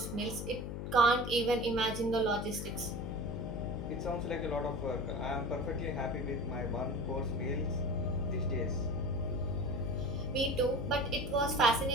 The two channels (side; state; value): left; noise; hum, 5 dB below the sound